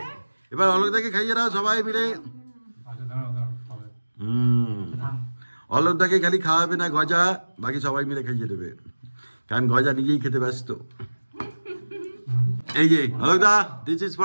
এবার অলোকদাকে খাইয়ে দাও সবাই মিলে। অলোকদাকে খালি খাওয়াবে না গজা, বাকি সবাই মিলে খাইয়ে দেবে, কারণ গজা নিজেই খেতে ব্যস্ত। এই যে অলোকদা, দিস ইজ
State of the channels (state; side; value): inverted; both; correlation -1.00